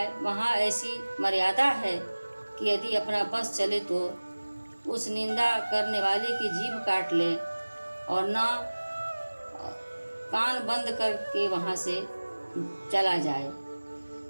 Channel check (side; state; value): both; inverted; correlation -1.00